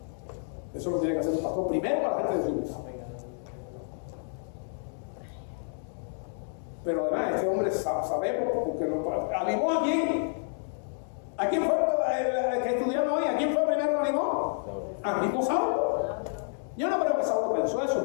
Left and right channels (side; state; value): right; silent; digital silence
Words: Eso lo tiene que hacer un pastor primero para la gente de su iglesia. Pero además, este hombre sabemos porque animó a quién. ¿A quién fue el que estudiamos hoy? ¿A quién fue primero que animó? A mismo Saulo. Yo no creo que Saulo pensó eso,